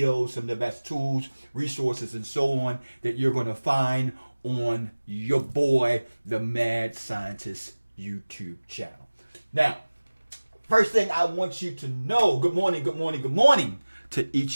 some of the best tools, resources, and so on that you're going to find on your boy, the Mad Scientist YouTube channel. Now, first thing I want you to know, good morning to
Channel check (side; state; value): both; inverted; correlation -1.00